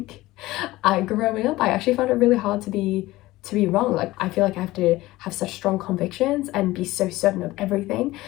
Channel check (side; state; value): right; quieter; 18.1 dB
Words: growing up, I actually found it really hard to be wrong. Like I feel like I have to have such strong convictions and be so certain of everything.